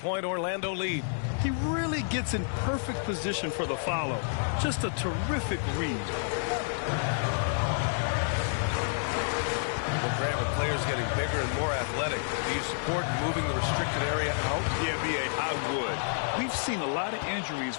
Orlando lead. He really gets in perfect position for the follow. Just a terrific read. Well, Grant, with players getting bigger and more athletic, do you support moving the restricted area out? Yeah, B.A., I would. We've seen a lot of injuries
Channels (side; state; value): right; silent; digital silence